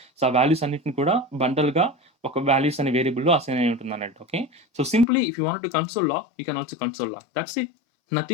So, ఆ వాల్యూస్ అన్నిటిని కూడా బండల్‌గా ఒక వాల్యూస్ అనే వేరియబుల్‌లో అసైన్ అయి ఉంటుందన్నట్టు. Okay. So, simply if you want to console log, you can also console log. That's it.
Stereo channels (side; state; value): right; drops out; at 5.1 s